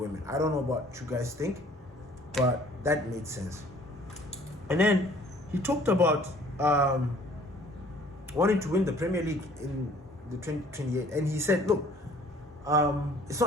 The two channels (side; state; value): both; normal; correlation 0.55